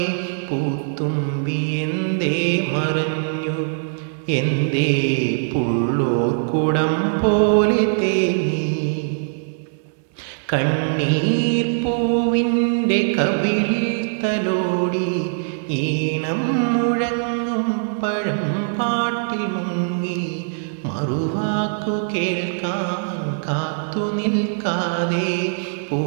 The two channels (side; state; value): left; silent; 65 dB below the other